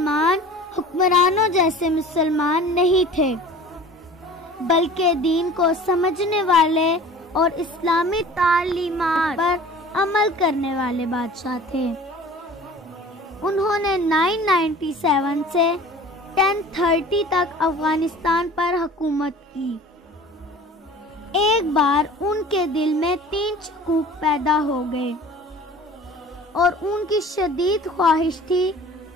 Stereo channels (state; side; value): normal; both; correlation 0.43